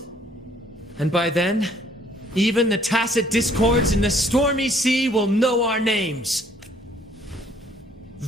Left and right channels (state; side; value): normal; both; correlation 0.62